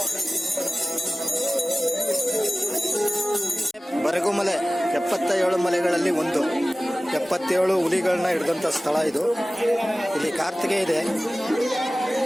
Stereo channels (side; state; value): both; normal; correlation 0.97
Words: ಬರಗುಮಲೆ 77 ಮಲೆಗಳಲ್ಲಿ ಒಂದು. 77 ಹುಲಿಗಳನ್ನ ಹಿಡಿದಂತ ಸ್ಥಳ ಇದು. ಇಲ್ಲಿ ಕಾರ್ತಿಗೆ ಇದೆ,